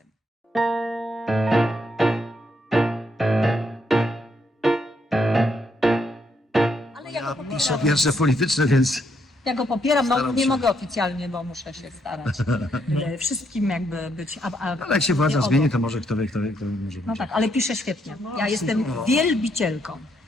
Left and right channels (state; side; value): normal; both; correlation 0.75